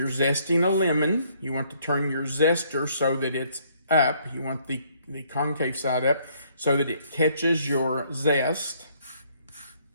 zesting a lemon, you want to turn your zester so that it's up. You want the concave side up so that it catches your zest.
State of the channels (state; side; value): inverted; both; correlation -0.66